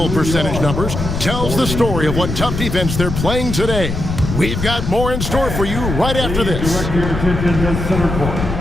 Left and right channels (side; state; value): left; noise; rumble, 4 dB below the sound